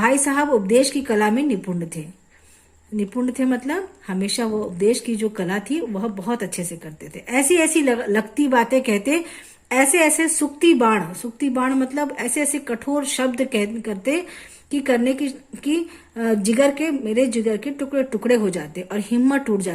साहब उपदेश की कला में निपुण थे मतलब हमेशा वो उपदेश की जो कला थी वह बहुत अच्छे से करते थे। ऐसी ऐसी लगती बातें कहते, ऐसे ऐसे सुक्ति बाण मतलब ऐसे ऐसे कठोर शब्द करते कि करने की मेरे जिगर के टुकड़े टुकड़े हो जाते और हिम्मत टूट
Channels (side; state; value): both; identical; correlation 1.00